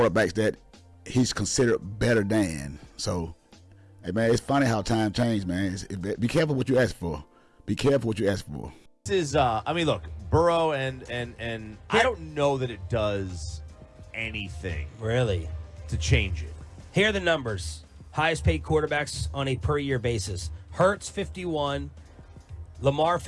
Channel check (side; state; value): both; identical; correlation 1.00